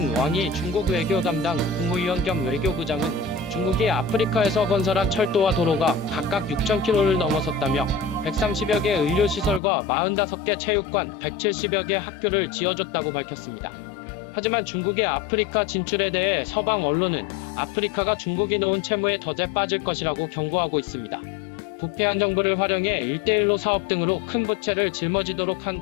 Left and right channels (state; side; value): drops out; right; at 9.6 s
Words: 왕이 중국 외교 담당 국무위원 겸 외교부장은 중국이 아프리카에서 건설한 철도와 도로가 각각 6,000km를 넘어섰다며 130여 개 의료시설과 45개 체육관, 170여 개 학교를 지어줬다고 밝혔습니다. 하지만 중국의 아프리카 진출에 대해 서방 언론은 아프리카가 중국이 놓은 채무에 덫에 빠질 것이라고 경고하고 있습니다. 부패한 정부를 활용해 1대1로 사업 등으로 큰 부채를 짊어지도록 한